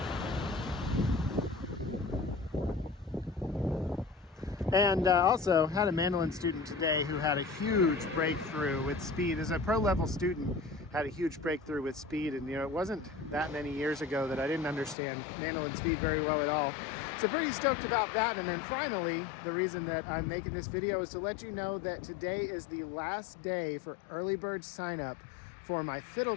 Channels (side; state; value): right; drops out; at 15.0 s